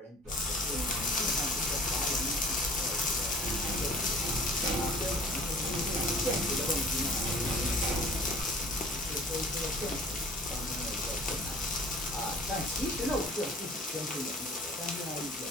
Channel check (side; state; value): both; normal; correlation 0.47